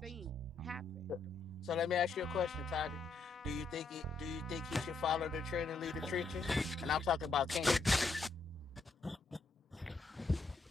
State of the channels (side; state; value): right; quieter; 3.8 dB